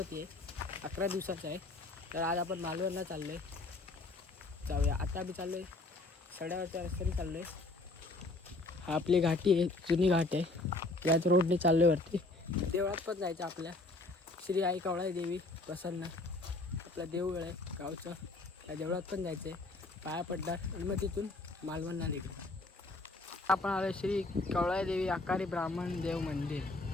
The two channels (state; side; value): quieter; right; 3.0 dB